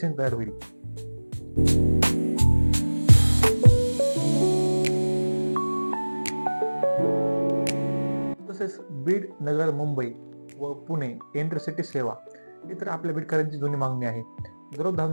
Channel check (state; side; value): inverted; both; correlation -1.00